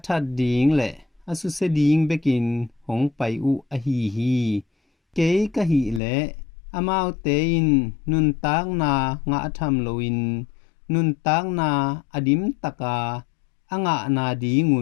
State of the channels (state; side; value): drops out; right; at 6.0 s